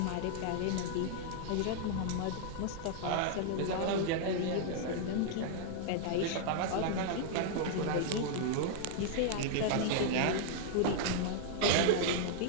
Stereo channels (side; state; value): both; different; correlation -0.01